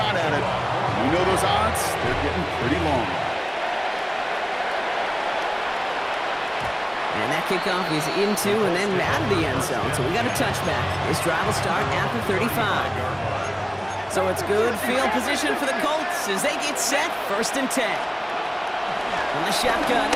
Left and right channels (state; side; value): identical; both; correlation 1.00